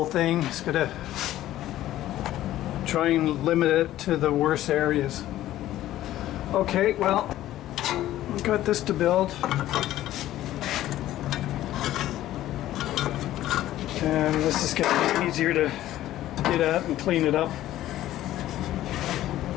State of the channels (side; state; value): right; quieter; 14.0 dB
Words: thing. It's going to try and limit it to the worst areas. Okay, well, we've got this to build. And this is going to be easier to get at and clean it up.